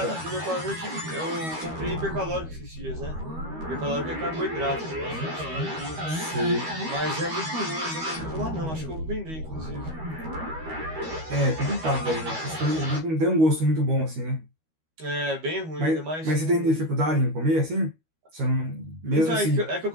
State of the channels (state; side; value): late; left; 13 ms